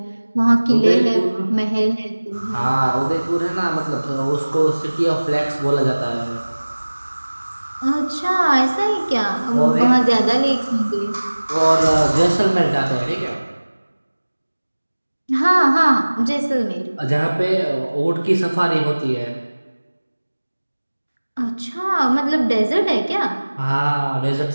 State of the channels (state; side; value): inverted; both; correlation -1.00